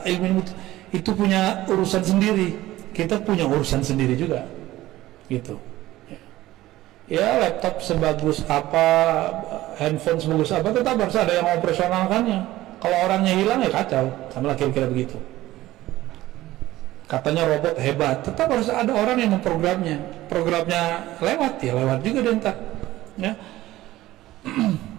ilmu itu punya urusan sendiri. Kita punya urusan sendiri juga, gitu. Ya, laptop sebagus apa, handphone sebagus apa, tetap harus ada yang operasionalkannya. Kalau orangnya hilang ya kacau, sama lah kira-kira begitu. Katanya robot hebat, tetap harus ada orang yang memprogramnya. Programnya lewat ya lewat juga deh ntar. Ya.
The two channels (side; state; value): left; quieter; 16.1 dB